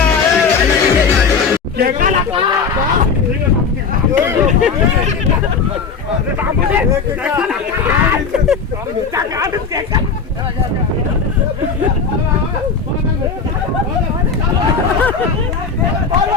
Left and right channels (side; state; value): right; quieter; 5.4 dB